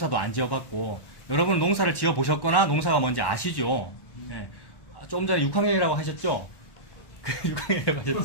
안 지어봤고 여러분 농사를 지어보셨거나 농사가 뭔지 아시죠? 네. 좀 전에 6학년이라고 하셨죠? 6학년이라고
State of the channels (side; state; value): right; late; 1.1 ms